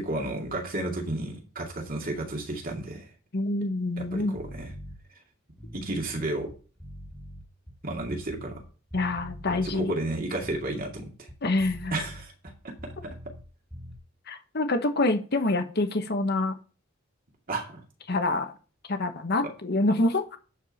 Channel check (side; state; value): both; normal; correlation 0.42